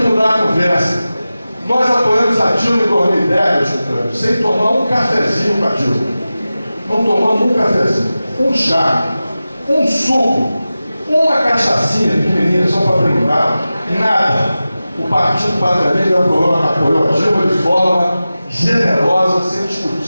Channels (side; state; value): both; inverted; correlation -0.95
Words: mudar a conversa. Nós apoiamos a Dilma em 2010, sem tomar um cafezinho com a Dilma. Não tomamos um cafezinho, um chá, um suco, uma cachaçinha pequenininha só para brincar, nada. O Partido Pátria Livre apoiou a Dilma de forma generosa, sem discutir,